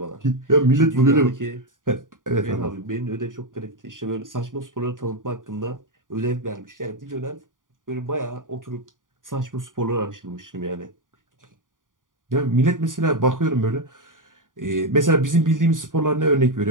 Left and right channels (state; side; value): late; left; 0.89 ms